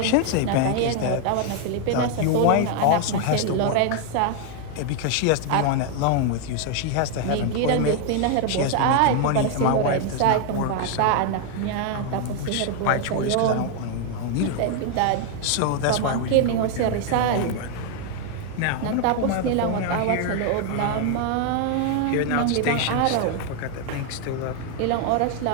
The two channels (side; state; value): both; different; correlation 0.00